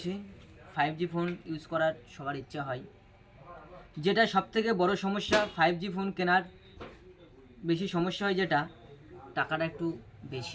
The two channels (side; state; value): both; identical; correlation 1.00